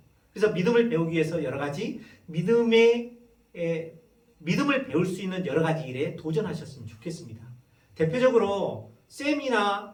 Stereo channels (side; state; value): both; identical; correlation 1.00